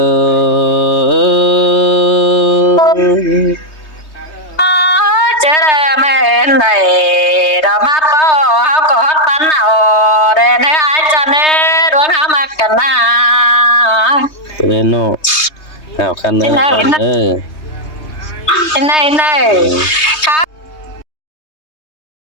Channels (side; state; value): right; late; 3.2 ms